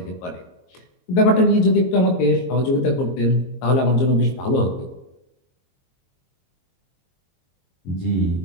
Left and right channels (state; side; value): late; right; 22 ms